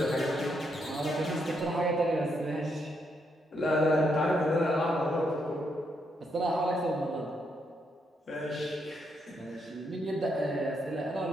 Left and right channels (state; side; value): normal; both; correlation 0.78